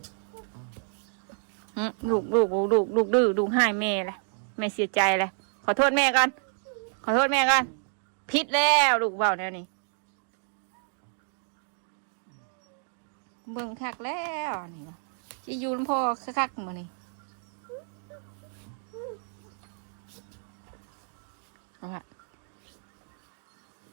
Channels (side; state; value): left; silent; 57 dB below the other